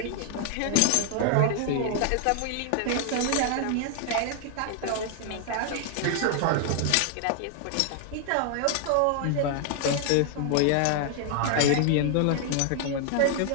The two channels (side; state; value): both; different; correlation 0.00